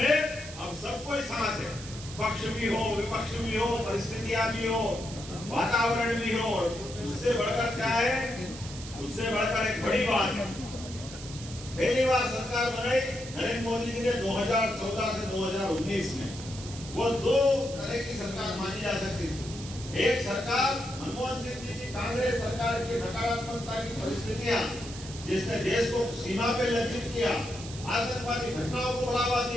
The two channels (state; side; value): noise; right; hiss, 13 dB below the sound